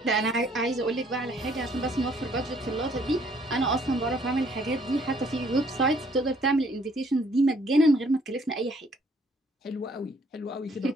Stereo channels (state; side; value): normal; both; correlation 0.63